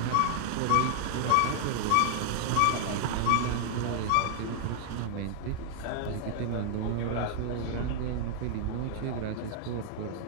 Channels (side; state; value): both; different; correlation 0.00